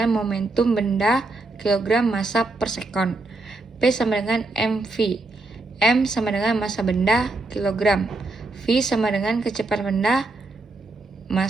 momentum benda kilogram massa per sekon. P sama dengan mv. M sama dengan massa benda kilogram. V sama dengan kecepatan benda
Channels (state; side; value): quieter; left; 3.2 dB